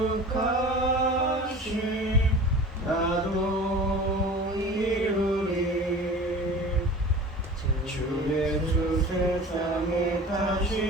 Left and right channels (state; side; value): normal; both; correlation 0.39